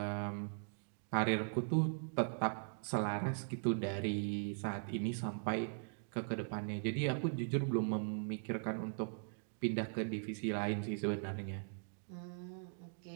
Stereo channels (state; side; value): silent; left; digital silence